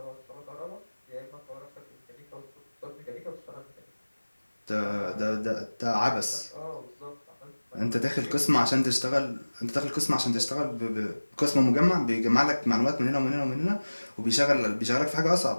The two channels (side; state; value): both; inverted; correlation -1.00